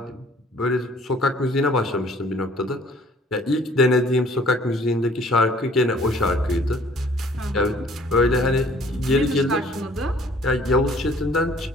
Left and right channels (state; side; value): normal; both; correlation 0.56